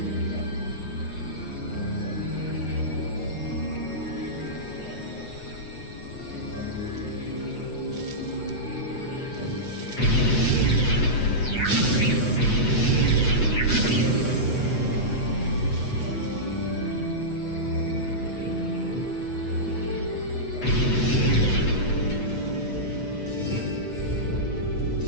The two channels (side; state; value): right; late; 8.0 ms